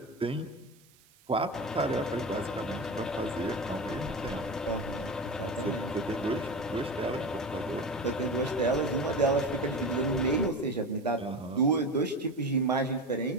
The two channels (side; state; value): right; noise; hiss, 29 dB below the sound